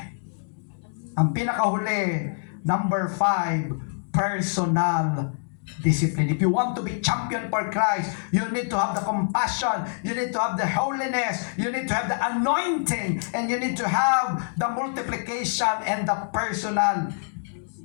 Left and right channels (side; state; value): right; silent; digital silence